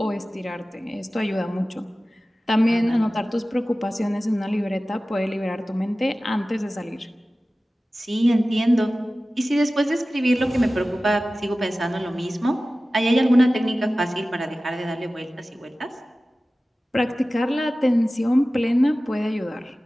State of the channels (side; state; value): both; normal; correlation 0.96